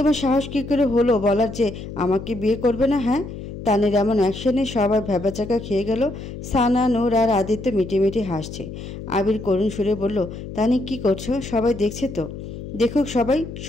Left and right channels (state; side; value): noise; left; hum, 10 dB below the sound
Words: সাহস কী করে হলো বলার যে আমাকে বিয়ে করবে না? হ্যাঁ? তানির এমন অ্যাকশনে সবাই ভ্যাবাচাকা খেয়ে গেল। সানা, নূর আর আদিত্য মিটিমিটি হাসছে। আবির করুণ সুরে বলল, তানি কি করছো? সবাই দেখছে তো? দেখুক সবাই,